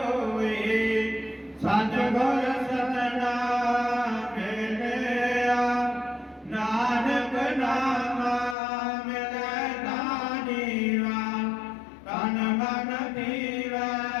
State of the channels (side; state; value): right; drops out; at 8.6 s